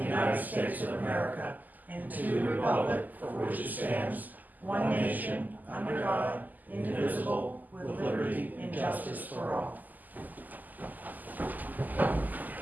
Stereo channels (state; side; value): late; left; 0.083 ms